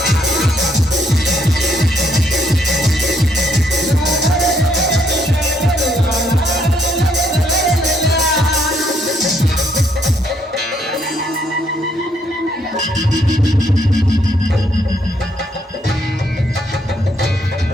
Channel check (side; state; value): both; normal; correlation 0.71